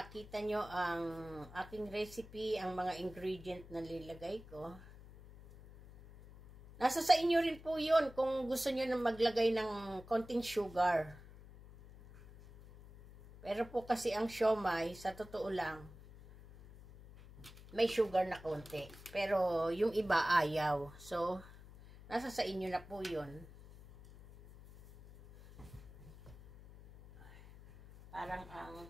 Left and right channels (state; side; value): noise; left; hum, 18 dB below the sound